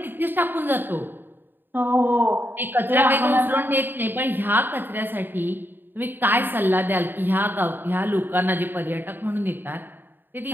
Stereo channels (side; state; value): left; late; 0.094 ms